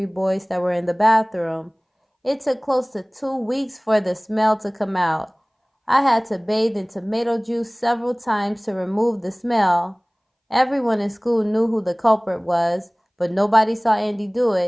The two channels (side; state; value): both; identical; correlation 1.00